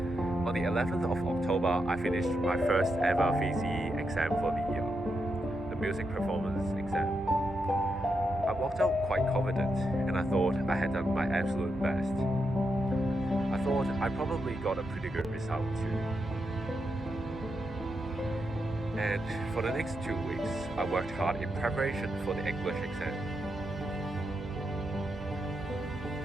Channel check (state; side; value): normal; both; correlation 0.84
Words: On the 11th of October, I finished my first ever VCE exam for the year, the music performance exam. I walked out quite confident, and I thought I had done my absolute best. I thought I probably got a pretty good result too. And for the next 2 weeks, I worked hard in preparation for the English exam.